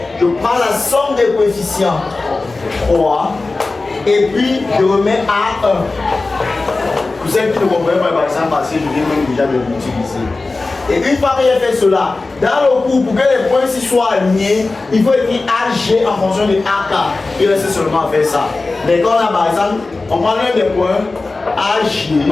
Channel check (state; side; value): quieter; right; 3.5 dB